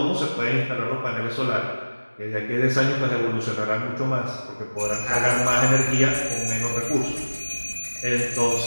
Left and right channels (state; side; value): inverted; both; correlation -1.00